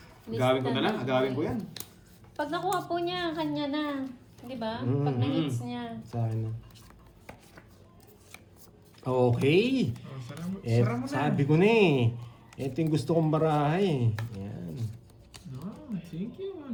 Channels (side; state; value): both; identical; correlation 1.00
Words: Agawin ko na lang. Agawin ko yan. Pag nakuha po niya, kanya na. Di ba? Pag na-hits niya. Sa akin na. Okay. Oh, sara mo na. Sabi ko na eh. Ito yung gusto kong barahay. Yan. No, thank you